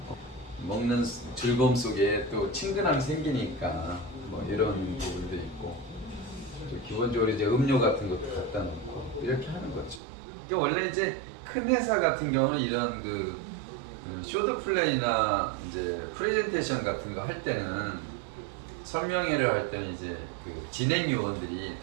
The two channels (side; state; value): left; drops out; at 10.0 s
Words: 먹는 즐거움 속에 또 친근함이 생기니까 뭐 이런 부분도 있고 또 기본적으로 이제 음료 같은 것도 갖다 놓고 이렇게 하는 거죠. 이게 원래 이제 큰 회사 같은 경우는 이런 그 쇼도 플레이나 이제 프레젠테이션 같은 거 할 때는 설명회를 할 때는 이제 그 진행 요원들이